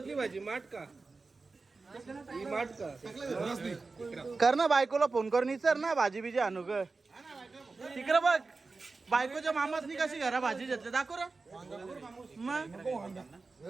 भाजी? माठ का? ही माठ का? कर ना बायकोला फोन करून विचार ना भाजी बिजी आणू ग. तिकडं बघ बायकोच्या मामासनी कशी घरा भाजी घेतली दाखव रे. मग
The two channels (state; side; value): quieter; left; 3.9 dB